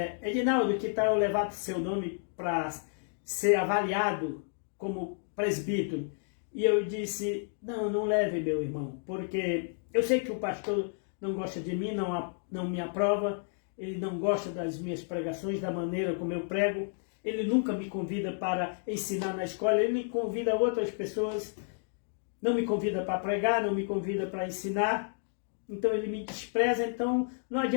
Edinaldo, que tal eu levar seu nome para ser avaliado como presbítero? E eu disse, não leve, meu irmão, porque eu sei que o pastor não gosta de mim, não me aprova, ele não gosta das minhas pregações, da maneira como eu prego, ele nunca me convida para ensinar na escola, ele me convida outras pessoas, não me convida para pregar, não me convida para ensinar, então ele me despreza, então não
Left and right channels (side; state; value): right; silent; digital silence